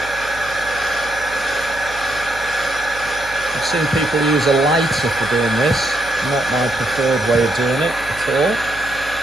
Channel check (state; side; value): noise; right; hum, 18 dB below the sound